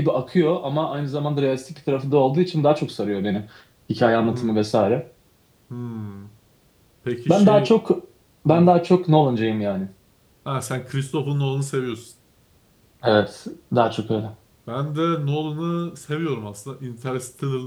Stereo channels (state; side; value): identical; both; correlation 1.00